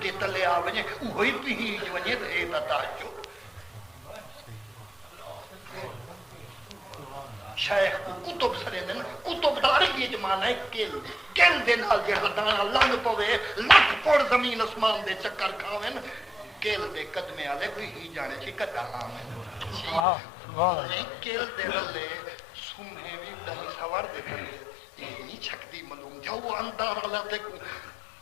دے تلے آوے وہی پیج ونجے دے تاجو شیخ کو کتب سرے دن کتب داری یہ جمانا ہے کل دے نال جہاں دانا لنگ پوے لکھ پوڑ زمین اسمان دے چکر کھاویں کل دے قدمے آلے کوئی ہی جانے چی کتا آمیں کل دے رلے سمہیں بھی دہی سوار دے تلے یہ نہیں چھکتی ملوم جو اندار اللہ تے کو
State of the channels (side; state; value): right; drops out; at 20.1 s